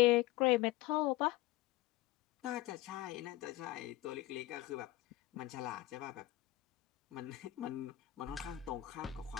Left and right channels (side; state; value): right; quieter; 16.5 dB